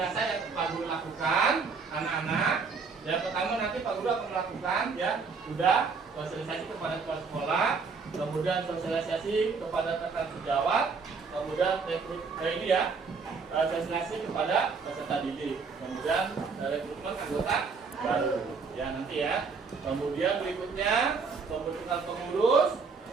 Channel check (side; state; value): left; quieter; 5.0 dB